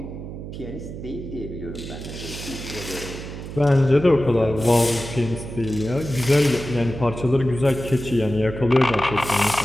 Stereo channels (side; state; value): right; noise; hum, 10 dB below the sound